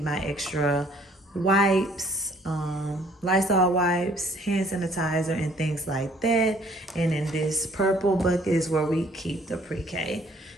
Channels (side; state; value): both; normal; correlation 0.60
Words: my extra wipes, Lysol wipes, hand sanitizer, and things like that. And in this purple bucket is where we keep the pre-K